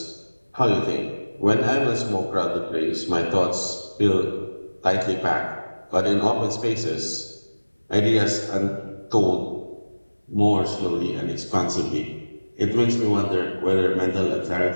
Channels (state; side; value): inverted; both; correlation -1.00